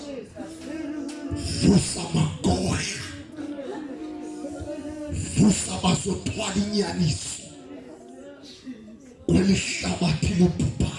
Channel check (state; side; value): identical; both; correlation 1.00